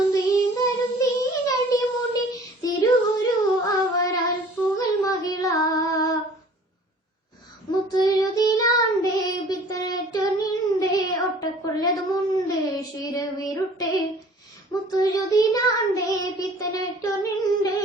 തീന്തരും തീരടി മുടി തിരുഗുരു അവരാൽ പുകൽ മഹിള മുത്തുരുതിലാണ്ടേ പിത്തരറ്റൊന്നിണ്ടേ ഒട്ടക്കൊള്ളതുമുണ്ട് ശിരവിരുട്ടെ മുത്തുരുതിലാണ്ടേ പിത്തരറ്റൊന്നിണ്ടേ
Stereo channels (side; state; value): both; normal; correlation 0.49